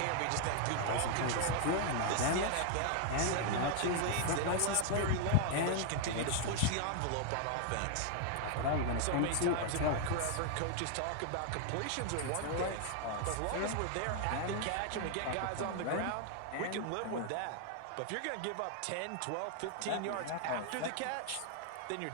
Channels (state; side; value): different; both; correlation 0.00